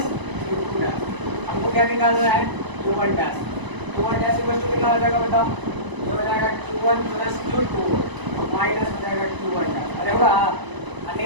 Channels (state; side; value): late; left; 1.0 ms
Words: Q2 dash. हमको क्या निकालना है Q1 डैश। Q1 डैश कितना हो जाएगा बताओ? ये हो जाएगा Q1 प्लस Q2 माइनस हो जाएगा Q1 डैश। अरे होगा?